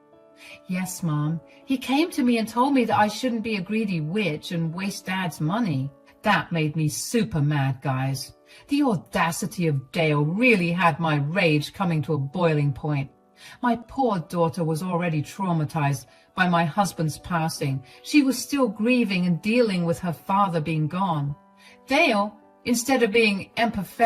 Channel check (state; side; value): identical; both; correlation 1.00